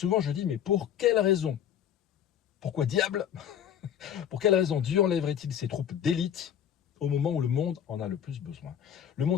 je dis, mais pour quelle raison? Pourquoi diable? Pour quelle raison Dieu enlèverait-il ses troupes d'élite au moment où le monde en a le plus besoin? Le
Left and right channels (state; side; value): quieter; right; 9.5 dB